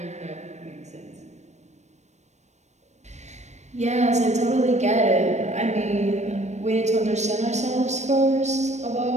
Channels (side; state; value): left; late; 0.33 ms